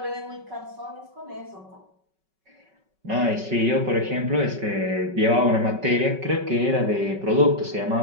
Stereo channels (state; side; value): late; left; 5.3 ms